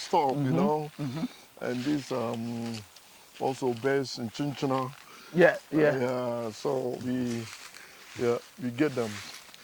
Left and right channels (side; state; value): both; identical; correlation 1.00